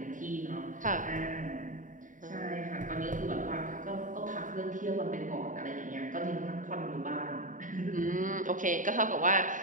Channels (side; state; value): left; late; 0.38 ms